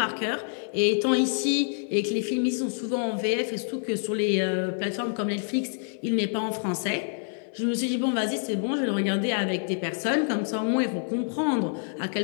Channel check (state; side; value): silent; right; 57 dB below the other